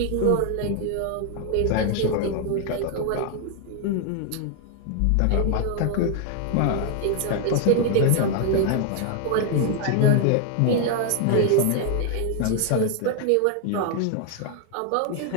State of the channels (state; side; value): different; both; correlation 0.00